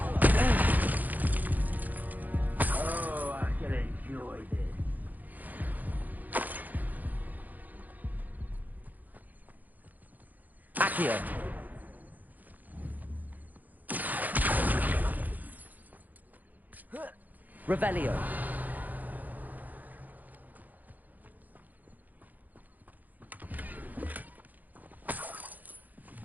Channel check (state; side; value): late; left; 0.082 ms